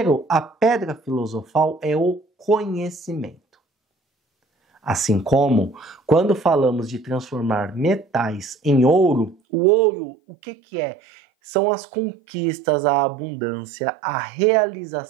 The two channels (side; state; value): left; drops out; at 9.3 s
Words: a pedra filosofal é o conhecimento. Assim como, quando falamos de transformar metais em ouro, o ouro, o que é? São as conquistas, a abundância, a